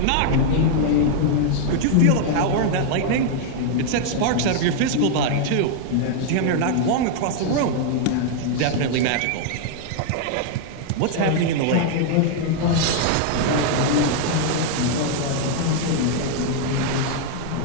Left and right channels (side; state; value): both; different; correlation 0.00